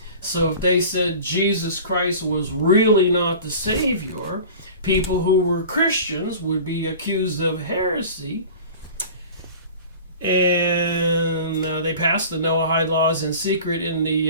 So if they said Jesus Christ was really not the Savior, people who were Christians would be accused of heresy. And they passed the Noahide laws in secret in the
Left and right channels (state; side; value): inverted; both; correlation -0.39